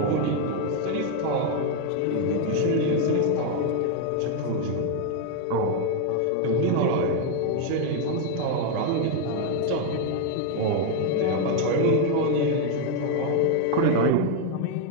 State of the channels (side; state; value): both; different; correlation 0.00